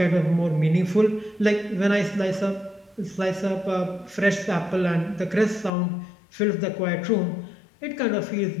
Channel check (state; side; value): drops out; right; at 5.7 s